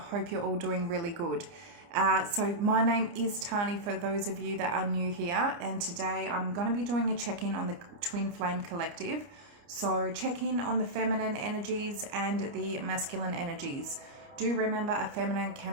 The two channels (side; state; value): left; late; 29 ms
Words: hope you're all doing really good. So, my name is Tani for those of you that are new here, and today I'm going to be doing a check in on the Twin Flame Collective. So, check in on the feminine energies and the masculine energies. Do remember a feminine